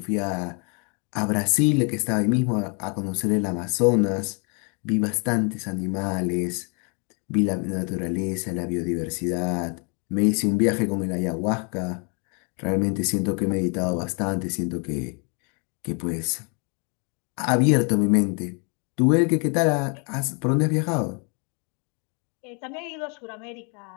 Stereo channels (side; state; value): right; quieter; 36.4 dB